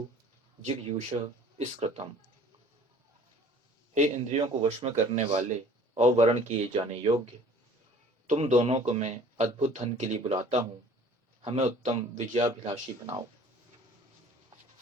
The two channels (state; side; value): normal; both; correlation 0.50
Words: जिगयूष स्कृतम। हे इंद्रियों को वश में करने वाले और वर्ण किए जाने योग्य, तुम दोनों को मैं अद्भुत धन के लिए बुलाता हूँ, हमें उत्तम विजयाभिलाषी बनाओ।